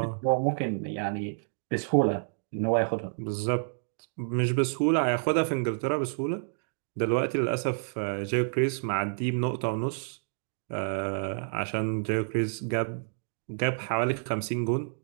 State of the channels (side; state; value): left; silent; digital silence